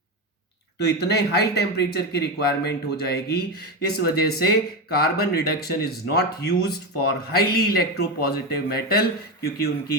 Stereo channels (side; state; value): both; normal; correlation 0.15